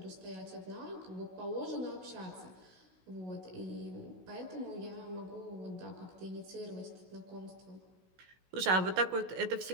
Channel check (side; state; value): left; late; 16 ms